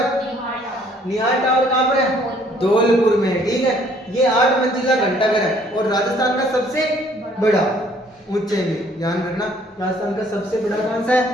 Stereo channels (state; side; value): normal; both; correlation 0.61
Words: निहाल टावर कहाँ पर है? धौलपुर में। ठीक है, ये 8 मंजिला घंटाघर है और राजस्थान का सबसे बड़ा, ऊंचाई में, ध्यान रखना। राजस्थान का सबसे बड़ा कौन सा